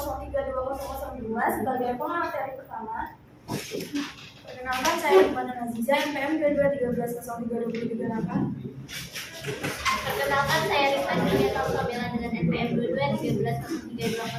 sebagai pemateri pertama. Perkenalkan, saya Iqbal Aziza NPM 2213032038. Perkenalkan, saya Rifat Julieta Sabila dengan NPM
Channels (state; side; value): identical; both; correlation 1.00